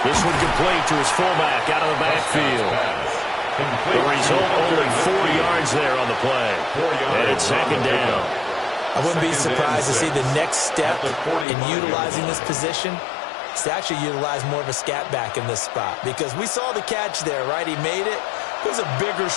This one complete to his fullback out of the backfield. The result, only 4 yards there on the play. And it's 2nd down. I wouldn't be surprised to see the next step in utilizing this position is to actually utilize more of a scat back in this spot. Because we saw the catch there, right? He made it. He was a bigger,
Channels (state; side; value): drops out; right; at 11.5 s